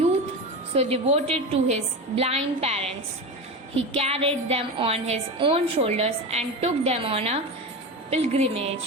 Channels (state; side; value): normal; both; correlation 0.23